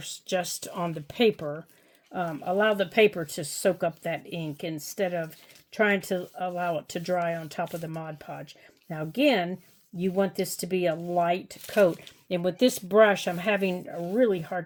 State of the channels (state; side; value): identical; both; correlation 1.00